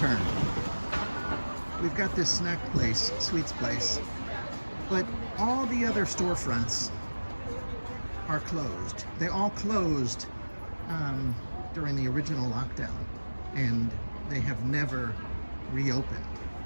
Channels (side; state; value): both; inverted; correlation -1.00